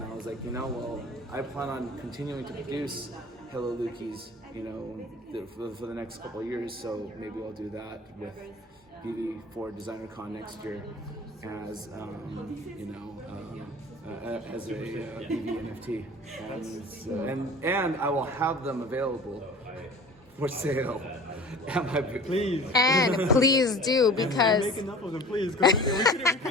I was like, well, I plan on continuing to produce Hello Lukis, for the next couple of years, so maybe I'll do that with VeVe for Designer Con next year as, as a VeVe NFT. And I will have them available for sale at my booth. Please. And please do, because Make enough of them, please. 'Cause we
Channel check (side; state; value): both; normal; correlation 0.42